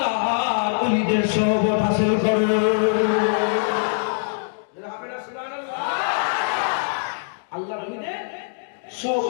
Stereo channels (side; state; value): right; silent; digital silence